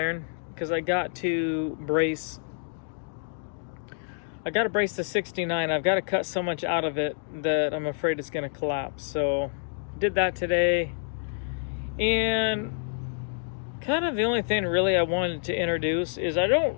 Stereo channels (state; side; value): silent; right; digital silence